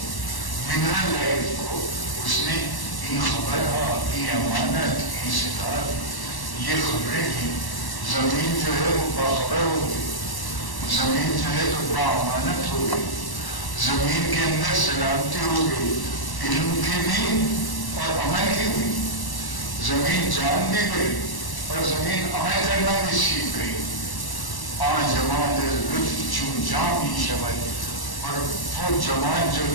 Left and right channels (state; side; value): late; right; 1.1 ms